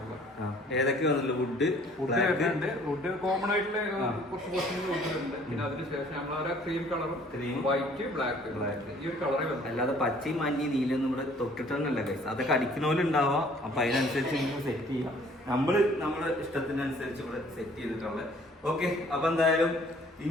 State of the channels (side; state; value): both; normal; correlation 0.56